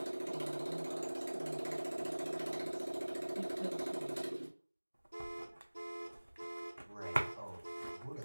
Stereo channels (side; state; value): both; inverted; correlation -1.00